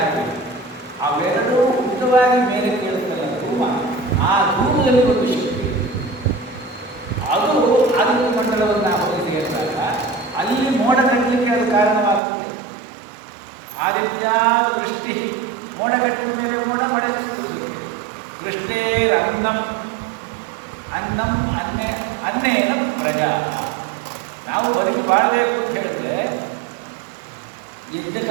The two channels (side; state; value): left; drops out; at 12.2 s